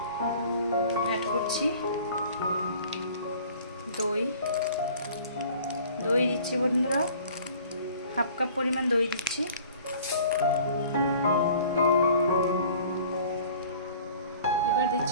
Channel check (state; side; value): inverted; both; correlation -0.50